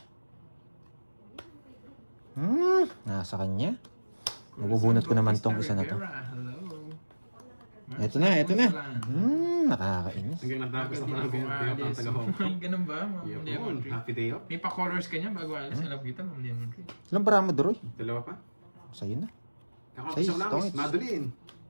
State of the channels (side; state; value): both; inverted; correlation -1.00